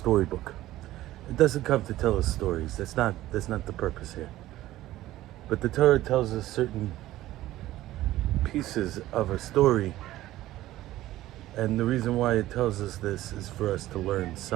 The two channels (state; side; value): quieter; left; 15.3 dB